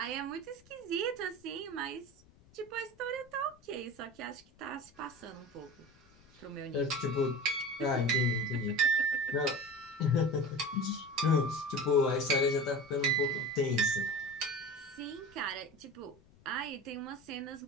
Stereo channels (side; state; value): left; noise; rumble, 27 dB below the sound